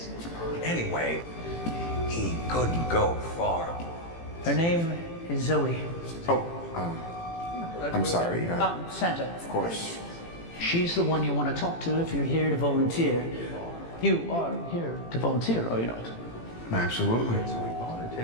Anyway, he couldn't go far. Her name is Zoe. I'm sorry. Santa. Of course. She's the one you want to talk to if you're here to volunteer. You are here to volunteer, are you not? Absolutely. So we bought a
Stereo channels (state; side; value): late; right; 18 ms